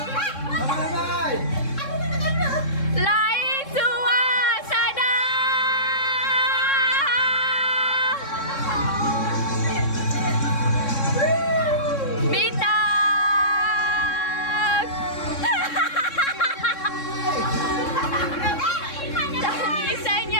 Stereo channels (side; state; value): right; late; 3.6 ms